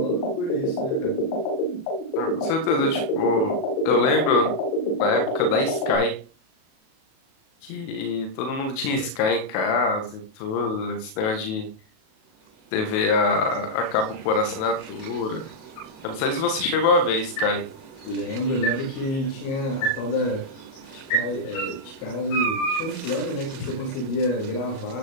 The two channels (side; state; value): right; late; 37 ms